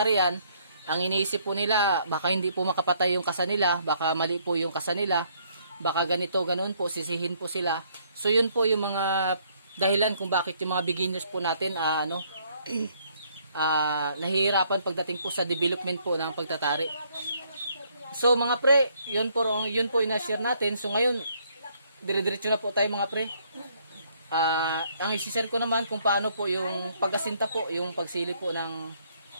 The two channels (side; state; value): both; inverted; correlation -0.67